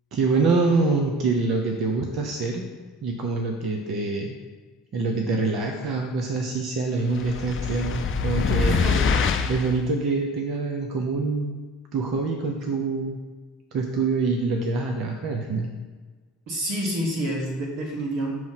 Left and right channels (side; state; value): both; normal; correlation 0.43